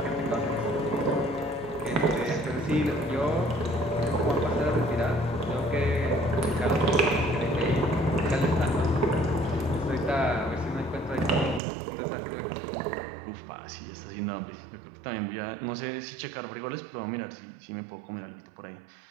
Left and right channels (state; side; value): drops out; left; at 11.6 s